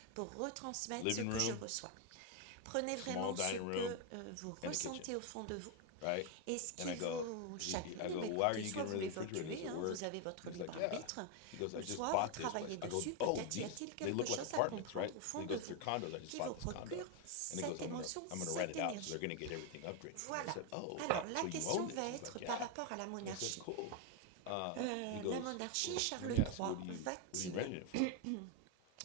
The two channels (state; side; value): different; both; correlation 0.01